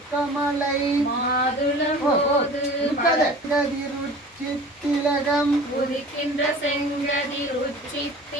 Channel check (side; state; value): both; normal; correlation 0.42